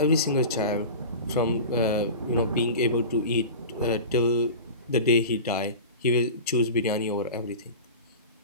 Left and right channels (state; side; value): inverted; both; correlation -0.33